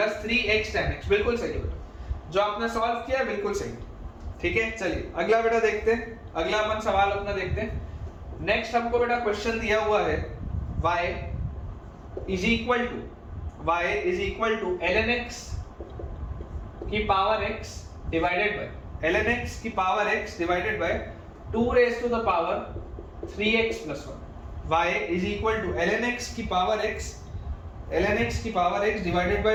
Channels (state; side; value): identical; both; correlation 1.00